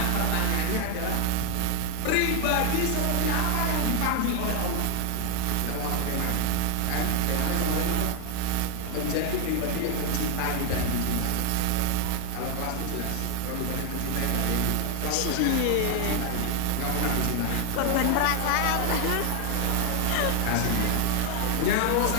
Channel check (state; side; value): different; both; correlation 0.00